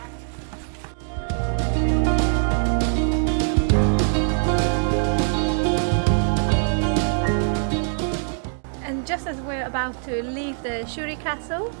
And just as we're about to leave the Shuri Castle,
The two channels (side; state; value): left; silent; digital silence